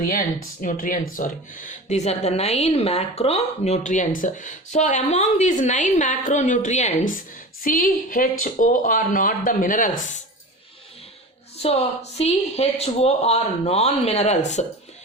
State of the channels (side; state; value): both; normal; correlation 0.32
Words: These are the 9 macronutrients. So among these 9 macronutrients, C, H, O are not the minerals. So C, H, O are non-minerals.